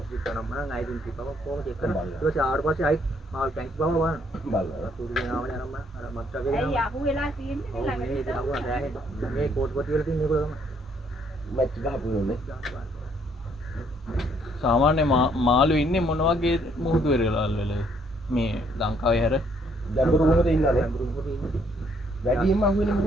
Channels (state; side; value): normal; both; correlation 0.68